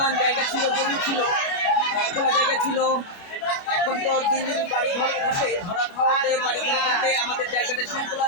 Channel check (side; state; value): right; late; 29 ms